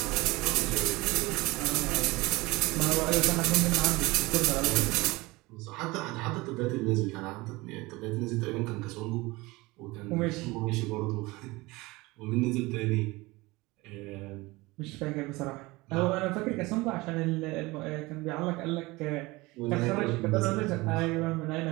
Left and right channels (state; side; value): quieter; left; 22.0 dB